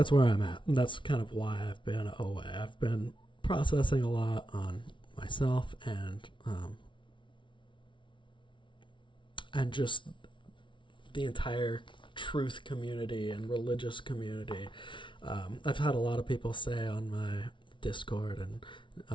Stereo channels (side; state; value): right; late; 0.24 ms